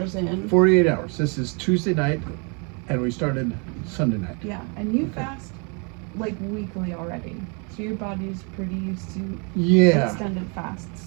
in. 48 hours. This is Tuesday night, and we started Sunday night. Yeah, and you Okay. fast like weekly already. So your body's pretty used to Yeah. extended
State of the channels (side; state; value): left; quieter; 35.1 dB